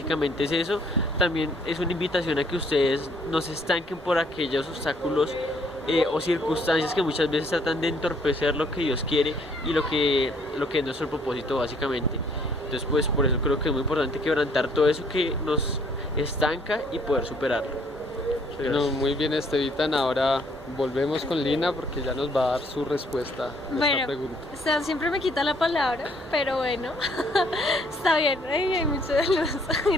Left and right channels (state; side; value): normal; both; correlation 0.64